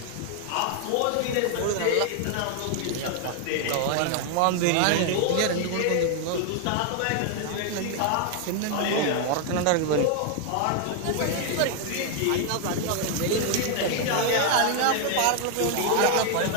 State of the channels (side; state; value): both; different; correlation 0.00